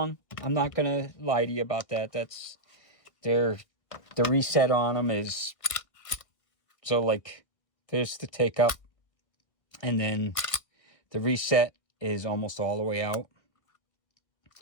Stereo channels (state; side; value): late; right; 1.6 ms